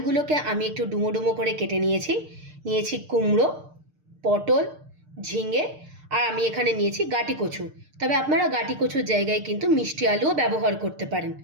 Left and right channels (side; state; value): left; late; 6.6 ms